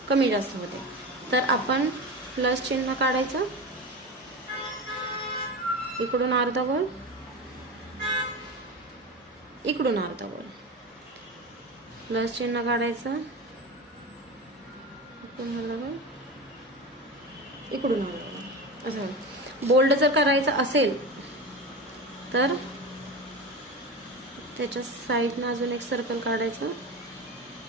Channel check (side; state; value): both; normal; correlation 0.25